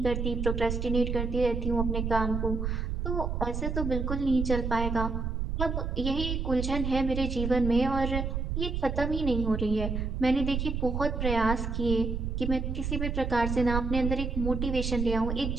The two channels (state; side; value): noise; right; rumble, 2 dB below the sound